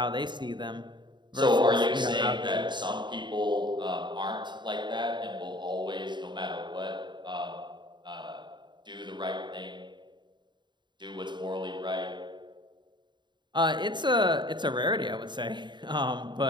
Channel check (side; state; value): left; late; 0.22 ms